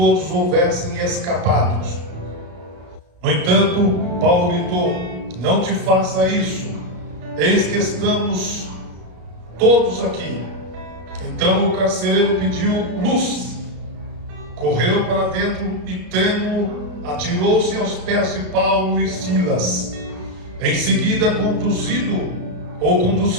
houvessem escapados. No entanto, Paulo gritou: não te faça isso, eis que estamos todos aqui. Então o carcereiro pediu luz, correu para dentro e, trêmulo, atirou-se aos pés de Paulo e Silas. Em seguida,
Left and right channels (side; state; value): left; late; 34 ms